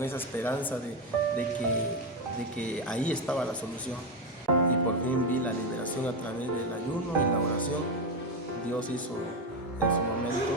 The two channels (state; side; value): normal; both; correlation 0.10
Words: esa esperanza de que ahí estaba la solución. Y por fin vi la liberación a través del ayuno y la oración. Dios hizo en su